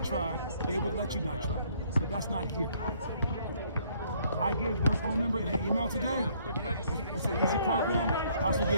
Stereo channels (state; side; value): inverted; both; correlation -0.64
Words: try, they would let you not try. But that's not here. I gave their phone number and an email today. It's an easy program. I also